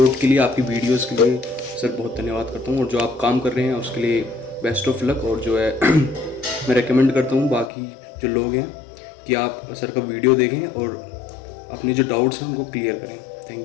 के लिए, आपकी वीडियोस के लिए सर बहुत धन्यवाद करता हूँ। और जो आप काम कर रहे हैं उसके लिए बेस्ट ऑफ लक। और जो है मैं रेकमेंड करता हूँ बाकी जो लोग हैं कि आप सर का वीडियो देखें और अपने जो डाउट्स हैं उनको क्लियर करें।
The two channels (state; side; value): drops out; right; at 7.7 s